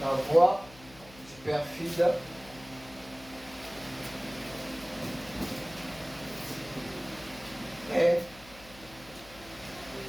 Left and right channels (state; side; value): noise; left; hum, 21 dB below the sound